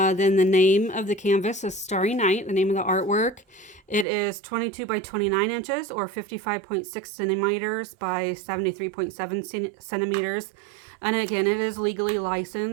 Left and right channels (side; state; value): left; drops out; at 4.0 s